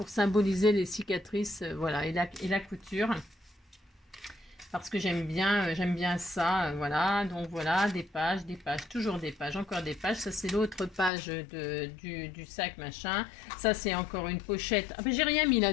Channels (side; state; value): right; drops out; at 11.1 s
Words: symboliser les cicatrices, voilà, et la couture. Parce que j'aime bien ça, voilà. Donc voilà, des pages, toujours des pages, encore des pages. Ça, c'est l'autre page du sac, machin. Ça, c'est encore une pochette. Ah ben, j'ai rien mis